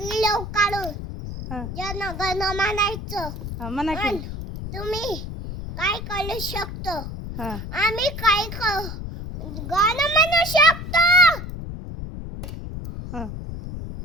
काढून हां जन गण म्हणायचं हां म्हणा की. आणि तुम्ही काय करू शकतो हां आम्ही काय गाणं म्हणू शकतो हां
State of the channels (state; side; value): noise; left; rumble, 8 dB below the sound